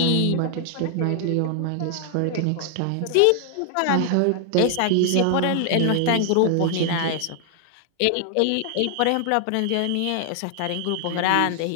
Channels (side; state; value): both; different; correlation 0.00